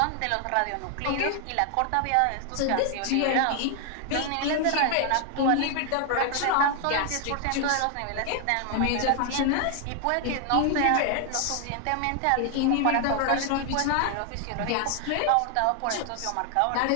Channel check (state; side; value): different; both; correlation 0.00